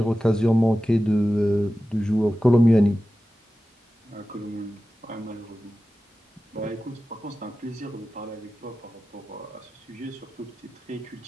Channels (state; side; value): normal; both; correlation 0.94